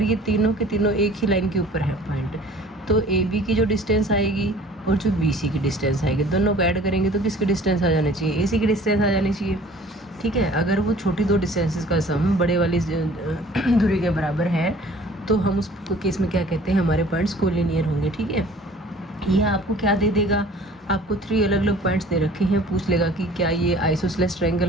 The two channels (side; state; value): both; normal; correlation 0.49